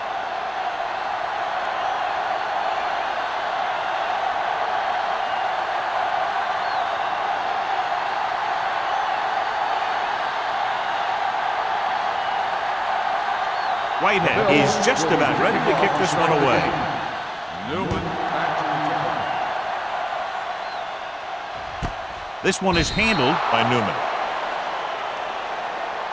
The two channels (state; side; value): identical; both; correlation 1.00